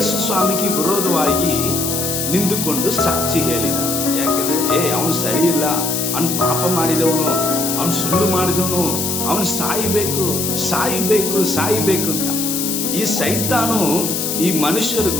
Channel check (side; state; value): left; noise; hiss, 2 dB below the sound